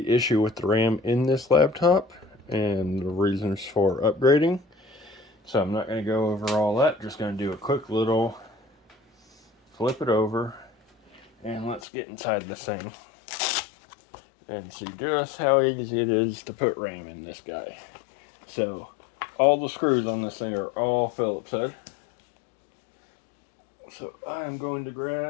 issue with the RAM in this laptop and the reasons for upgrading. So I'm not going to go over all that, just going to do a quick little flip it over and let's get inside this thing and see just how easy it is to put RAM in this guy. So all the screws on this thing are all Phillips head. So I am going to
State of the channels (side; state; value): right; drops out; at 11.8 s